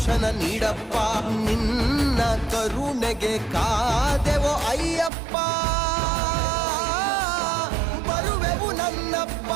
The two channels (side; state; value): left; drops out; at 5.1 s